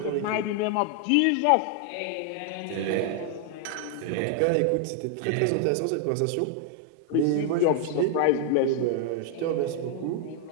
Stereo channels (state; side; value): different; both; correlation 0.00